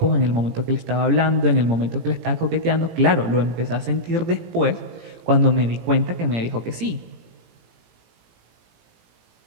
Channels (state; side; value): late; left; 17 ms